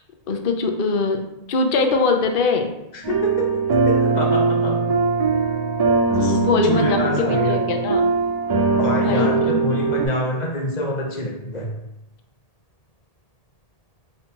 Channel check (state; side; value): late; right; 1.8 ms